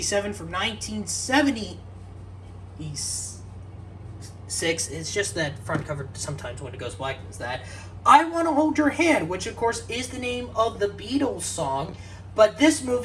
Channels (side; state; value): both; identical; correlation 1.00